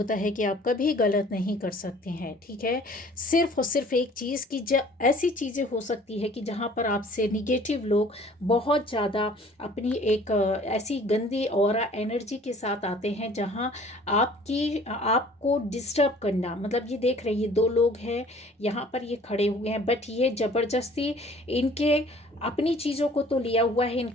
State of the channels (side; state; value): both; normal; correlation 0.52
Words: है कि आप कभी गलत नहीं कर सकते हैं। ठीक है, सिर्फ और सिर्फ एक चीज़ की ऐसी चीज़ें हो सकती है कि जहाँ पर आपसे निगेटिव लोग बहुत ज़्यादा अपनी एक ऐसी गंदी ऑरा एनर्जी के साथ आते हैं जहाँ आपको डिस्टर्ब करना। मतलब ये देख रहे हैं, ये दो लोग हैं यहाँ पर, ये खड़े हुए हैं, बट ये ज़बरदस्ती इनके अपनी चीज़ों को तो लिया हुआ है,